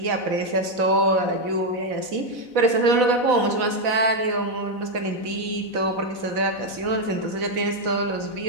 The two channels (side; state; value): left; late; 4.0 ms